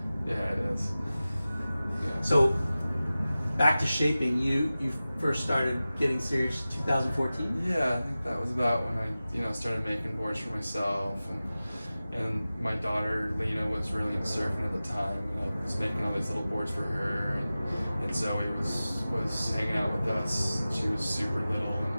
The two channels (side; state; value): both; inverted; correlation -0.96